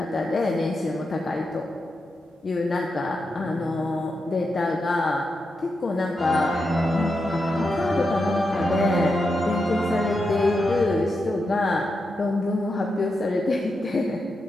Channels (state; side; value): normal; both; correlation 0.86